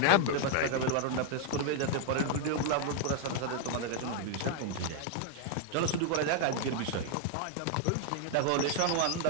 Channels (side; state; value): both; different; correlation 0.00